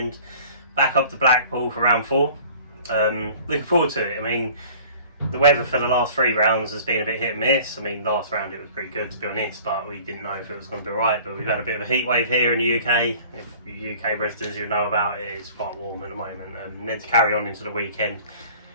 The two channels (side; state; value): both; inverted; correlation -0.48